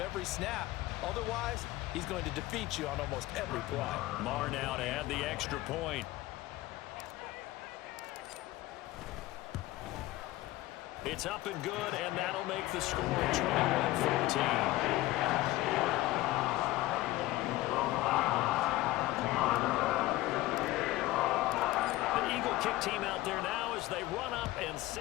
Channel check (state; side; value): quieter; right; 17.5 dB